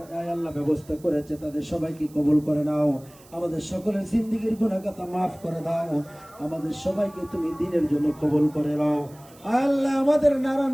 আল্লাহ ব্যবস্থা করেছে তাদের সবাইকে কবুল করে নাও। আমাদের সকলের জিন্দেগীর গুনাহগাতা মাফ করে দাও। আমাদের সবাইকে তুমি দ্বীনের জন্য কবুল করে নাও। আল্লাহ, আমাদের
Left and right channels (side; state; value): right; noise; hiss, 25 dB below the sound